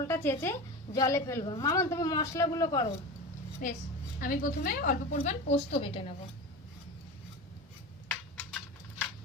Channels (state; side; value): normal; both; correlation 0.27